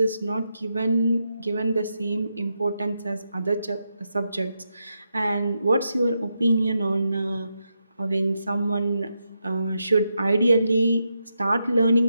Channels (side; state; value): both; inverted; correlation -0.85